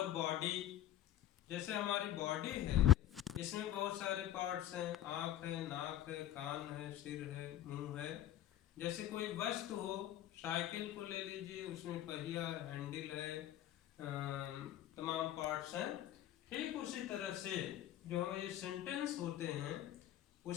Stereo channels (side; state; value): right; quieter; 12.4 dB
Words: बॉडी, जैसे हमारी बॉडी है, इसमें बहुत सारे पार्ट्स हैं। आँख है, नाक है, कान है, सिर है, मुंह है। जैसे कोई वस्तु हो, साइकिल को ले लीजिए, उसमें पहिया, हैंडल है, तमाम पार्ट्स हैं। ठीक उसी तरह से जो ये सेंटेंस होते हैं